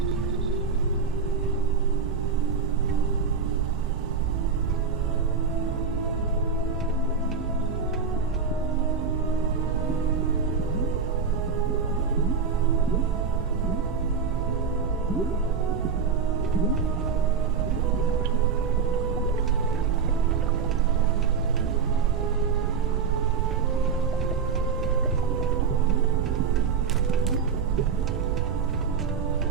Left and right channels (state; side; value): quieter; left; 5.7 dB